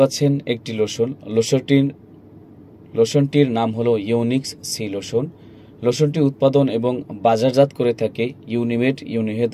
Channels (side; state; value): both; identical; correlation 1.00